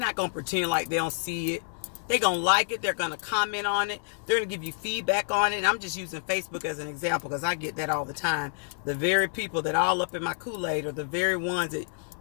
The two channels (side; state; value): right; silent; 59 dB below the other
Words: going to pretend like they don't see it. They're going to like it. They're going to comment on it. They're going to give you feedback on it. And I'm just using Facebook as an example because I get that all the time. The very people that all up in my Kool-Aid are the very ones that